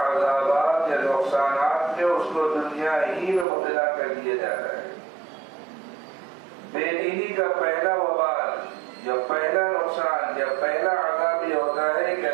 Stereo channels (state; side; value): drops out; left; at 3.5 s